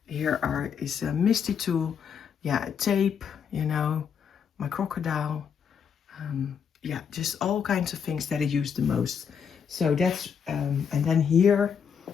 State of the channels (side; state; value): right; quieter; 7.1 dB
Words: Here is a Misty tool, yeah, tape, my crocodile, yeah, just all kinds of things that I use the most. So that's, and then here